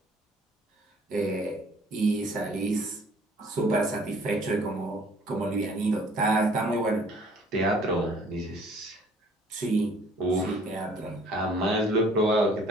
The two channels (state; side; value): normal; both; correlation 0.56